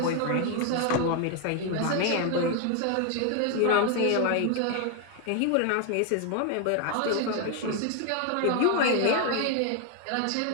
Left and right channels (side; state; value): both; different; correlation 0.01